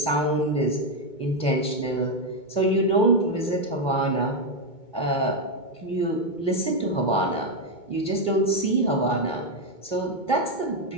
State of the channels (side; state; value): right; late; 2.2 ms